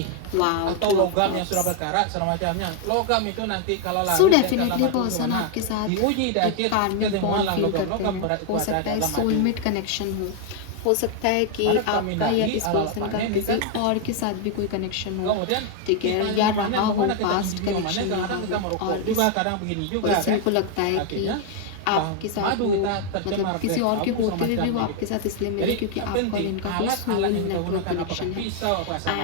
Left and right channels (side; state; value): both; different; correlation 0.00